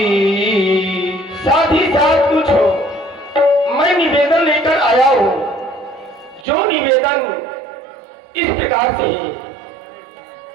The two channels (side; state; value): left; drops out; at 6.5 s